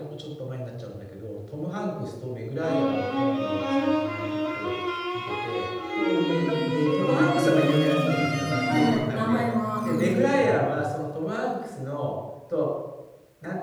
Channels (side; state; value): both; identical; correlation 1.00